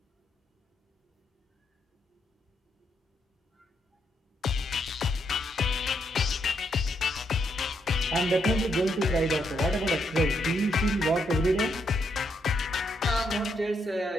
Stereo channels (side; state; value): both; normal; correlation 0.77